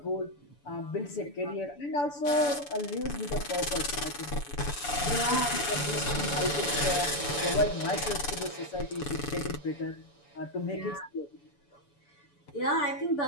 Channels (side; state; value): right; late; 7.0 ms